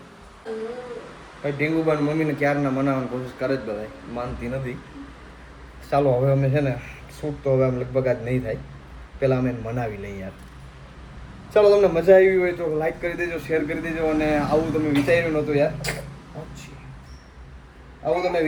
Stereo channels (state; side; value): identical; both; correlation 1.00